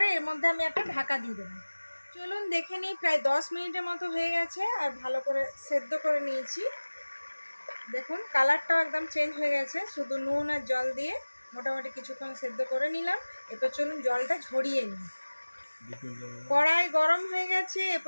এর মধ্যে আমি একটা ঢাকা দিয়ে দেবো। চলুন দেখে নিই, প্রায় 10 মিনিটের মতো হয়ে গেছে আর ভালো করে সেদ্ধ করে নিয়েছি। দেখুন কালারটাও একদম চেঞ্জ হয়ে গেছে। শুধু নুন আর জল দিয়ে মোটামুটি কিছুক্ষণ সেদ্ধ করে নিলাম। এরপর চলুন জলটা ঝরিয়ে নিই। কড়াই গরম হয়ে গেছে,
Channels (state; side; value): inverted; both; correlation -1.00